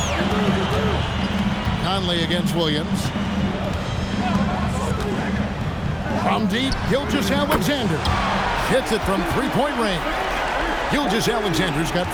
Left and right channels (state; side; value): identical; both; correlation 1.00